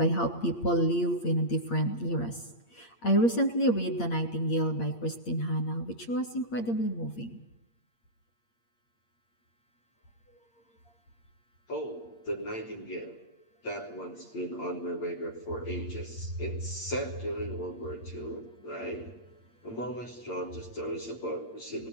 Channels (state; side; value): late; right; 8.6 ms